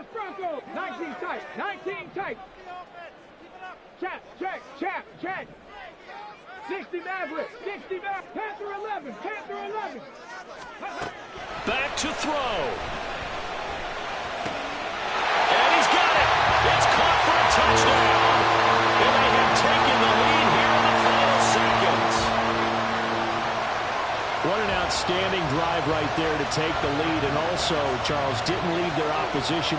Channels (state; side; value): identical; both; correlation 1.00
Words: Bronco. 19 tight. 19 tight. Check. 60 Maverick. 60 Maverick. Panther 11. Panther 11. Back to throw. And he's got it. It's caught for a touchdown. And they have taken the lead here in the final seconds. What an outstanding drive right there to take the lead. And also, Charles, didn't leave their